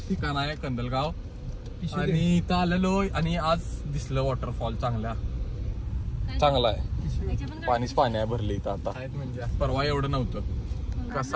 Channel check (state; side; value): identical; both; correlation 1.00